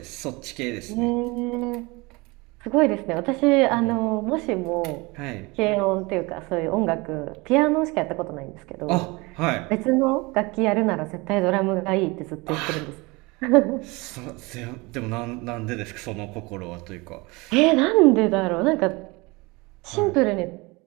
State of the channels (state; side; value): quieter; left; 24.9 dB